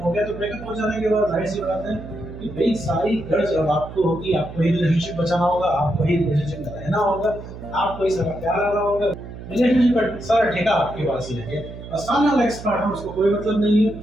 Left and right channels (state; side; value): noise; right; hum, 13 dB below the sound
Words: हो गया, तो ब्रेकअप हो जाने के बाद जाहिर सी बात है कि भाई सारी गर्ज अब आपको होगी, आपको ही रिलेशनशिप बचाना होगा, आपको ही रिलेशनशिप में रहना होगा, आपको ही सारा प्यार आना होगा, रिलेशनशिप का सारा ठेका आपके पास ही है। और सामने वाला एक्स पार्टनर, उसको कोई मतलब नहीं है,